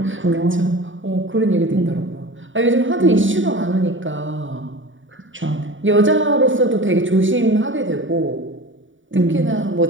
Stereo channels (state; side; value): late; left; 0.56 ms